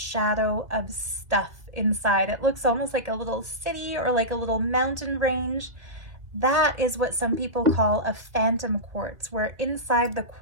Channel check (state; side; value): late; left; 1.8 ms